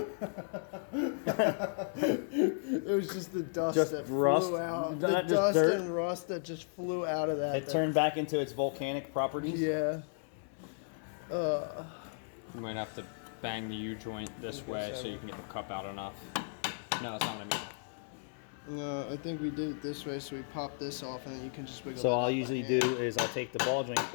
It was just the dust that rust? flew out. The Not just dust dirt? and rust that just flew out of that. It turned back into its volcanic properties. Yeah. You might have to bang the U-joint this way so you can get the cup out enough. No, that's not what I mean. No, I think we did it this way, so we pop this off, and then you can just wiggle. So that all out I usually by do hand. is I'll take the ball joint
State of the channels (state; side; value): silent; right; 55 dB below the other